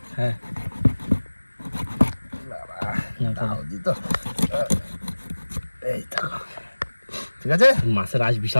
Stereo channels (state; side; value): inverted; both; correlation -1.00